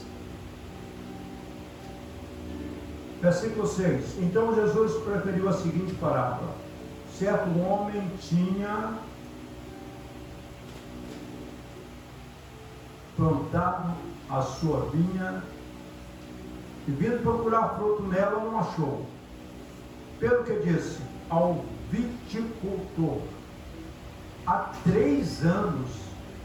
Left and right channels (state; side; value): identical; both; correlation 1.00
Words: Versículo 6. Então Jesus preferiu a seguinte parábola: certo homem tinha plantado a sua vinha e, vindo procurar fruto nela, não achou. Pelo que disse ao viticultor: há 3 anos